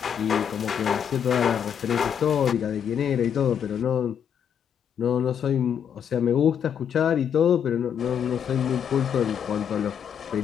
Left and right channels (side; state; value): right; quieter; 8.3 dB